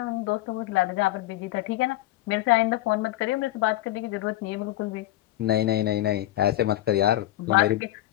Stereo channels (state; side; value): quieter; right; 15.3 dB